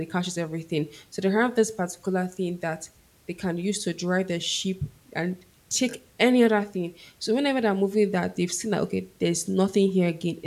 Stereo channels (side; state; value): both; identical; correlation 1.00